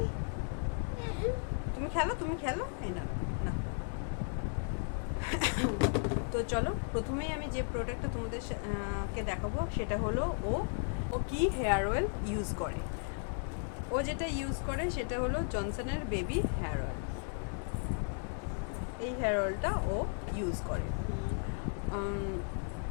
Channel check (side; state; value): right; silent; 54 dB below the other